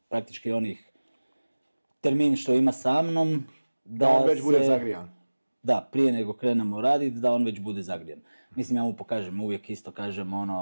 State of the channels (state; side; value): inverted; both; correlation -1.00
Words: praktički onih termin što ima sa mnom, da on već bude zagrijan. Da, prije nego krenemo raditi, da on već bude zagrijan. Mislim, ja mu pokažem, uvijek isto kažem